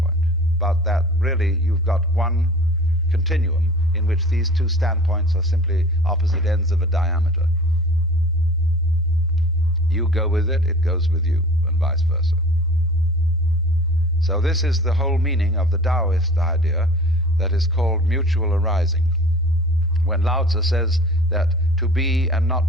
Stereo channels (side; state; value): both; normal; correlation 0.43